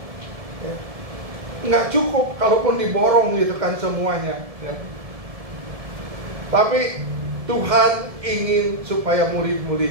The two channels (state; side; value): late; left; 1.7 ms